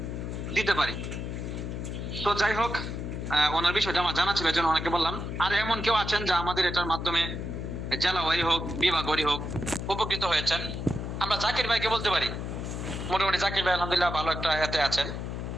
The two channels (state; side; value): noise; left; hum, 5 dB below the sound